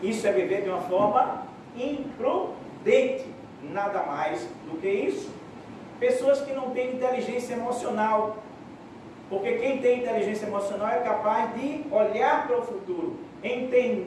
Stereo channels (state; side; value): identical; both; correlation 1.00